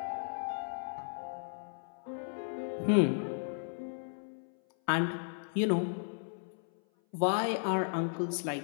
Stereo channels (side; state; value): right; silent; 55 dB below the other